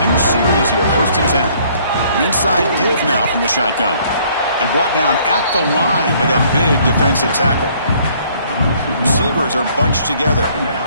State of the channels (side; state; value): both; inverted; correlation -0.61